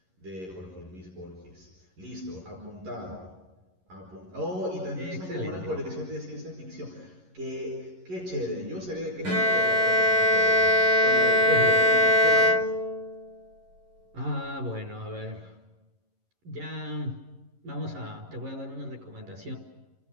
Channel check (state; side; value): late; left; 11 ms